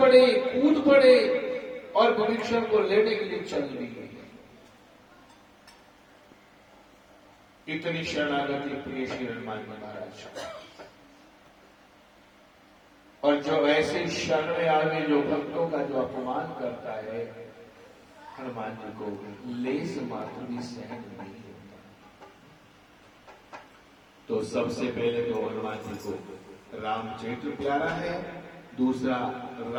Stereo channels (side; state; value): both; identical; correlation 1.00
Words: कूद पड़े और विभीषण को लेने के लिए चल दी। इतनी शरणागति प्रिय श्री हनुमान जी महाराज। और जो ऐसे शरण में आवे जो भक्तों का जो अपमान करता है, हनुमान जी को लेस मात्र भी सहन नहीं होता। तो सबसे पहले तो हनुमान जी को रामचरित्र प्यारा है, दूसरा